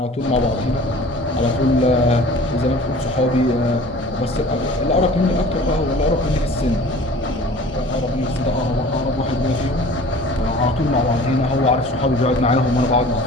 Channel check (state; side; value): normal; both; correlation 0.45